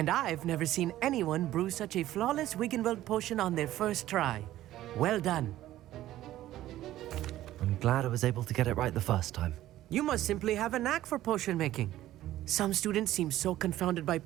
I've never seen anyone brew such a flawless Wiggenweld potion on their first try. Well done. I'm glad I was able to get it right the first time. You must simply have a knack for potion making. Some students seem so confounded by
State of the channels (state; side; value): quieter; left; 14.2 dB